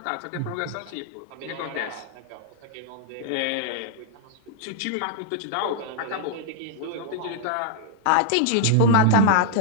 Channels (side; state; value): both; different; correlation -0.01